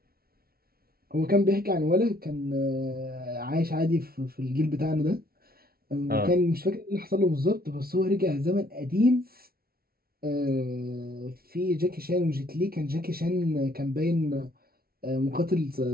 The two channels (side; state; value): left; late; 0.44 ms